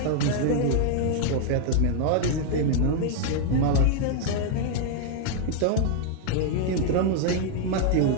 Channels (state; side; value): different; both; correlation 0.00